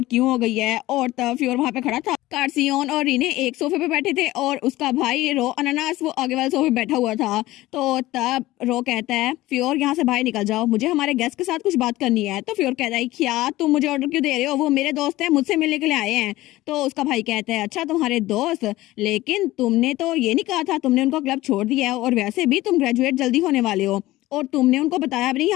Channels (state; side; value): quieter; right; 17.3 dB